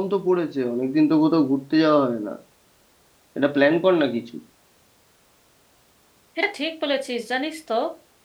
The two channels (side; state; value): both; identical; correlation 1.00